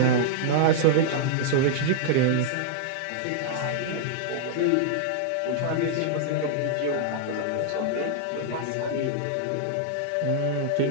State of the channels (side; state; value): both; different; correlation -0.01